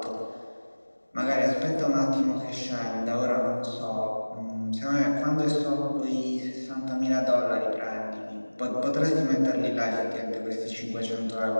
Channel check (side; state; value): both; inverted; correlation -1.00